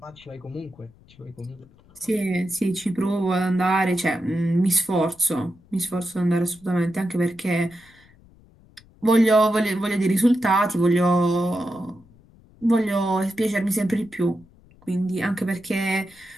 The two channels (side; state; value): left; noise; rumble, 27 dB below the sound